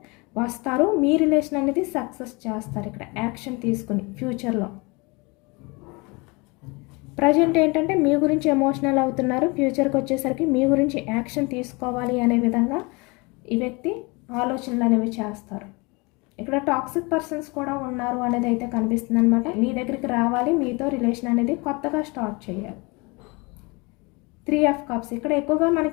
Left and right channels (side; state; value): right; quieter; 27.3 dB